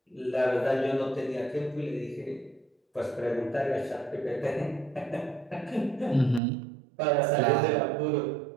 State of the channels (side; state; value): left; drops out; at 6.4 s